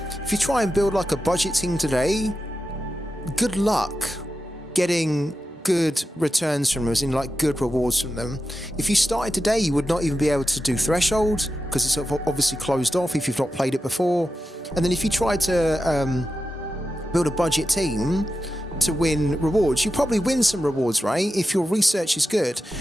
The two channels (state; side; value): normal; both; correlation 0.91